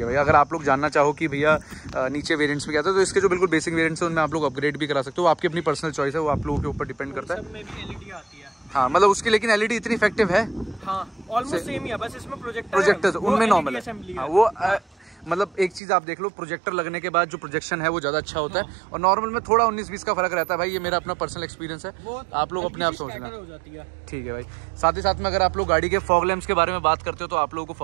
है भैया, अगर आप लोग जानना चाहो कि भैया नीचे वेरिएंट्स में क्या था तो इसके जो बिल्कुल बेसिक वेरिएंट्स हैं उनमें आप लोग अपग्रेड भी करा सकते हो। आपकी अपनी पर्सनल चॉइस है, वो आप लोगों के ऊपर डिपेंड करता है। सब में भी एलईडी आती है। हाँ, मतलब उसकी लेकिन एलईडी इतनी इफेक्टिव है। हाँ, ऑलमोस्ट सेम ही है, बस इसमें प्रोजेक्टर उनमें नॉर्मल है। वो मतलब एक चीज आप देख लो, प्रोजेक्टर लगने के बाद जो प्रोजेक्शन है वो ज्यादा अच्छा होता है और नॉर्मल में थोड़ा 19-20 का फर्क रहता है। भाई ये मेरा अपना पर्सनल एक्सपीरियंस है, आप लोग अपने आप सोचना। ठीक है भाई। साथ ही साथ में अगर आप लोग गाड़ी के फॉग लैंप्स के बारे में बात करते हो तो आप लोगों को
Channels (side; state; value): left; drops out; at 15.8 s